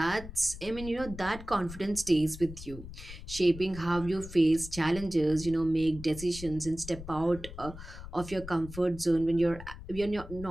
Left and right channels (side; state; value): left; noise; rumble, 13 dB below the sound